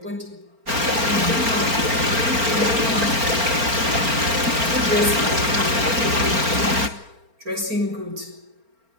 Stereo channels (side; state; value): left; late; 4.4 ms